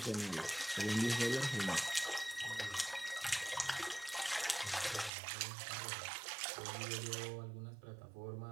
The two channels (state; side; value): drops out; left; at 5.1 s